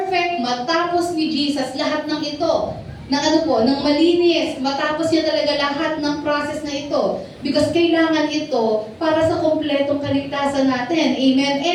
matapos ni Jesus lahat ng ito. Ng malinis, matapos niya talaga lahat ng process na ito. Because kailangan ito para sa kompletong kaligtasan natin. Amen?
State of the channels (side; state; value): both; identical; correlation 1.00